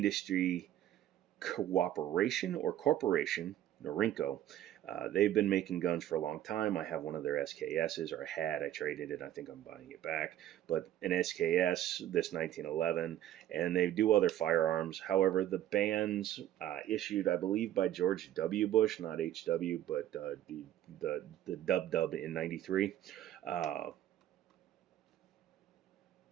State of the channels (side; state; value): left; quieter; 12.3 dB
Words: Cooperation or Corporation, Norinco, they've been making guns for a long time. I have one of their SKSs, or I traded it. I think I'm buying it back. But an SKS, this 1911, and they do other firearms. However, the bans issued, I believe, by George W. Bush, not HW, but the Dub in 93.